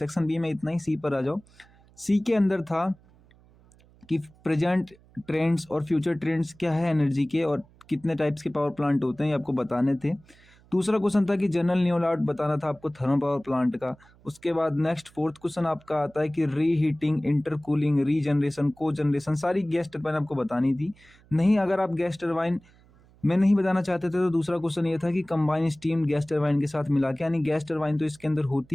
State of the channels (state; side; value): noise; right; hum, 28 dB below the sound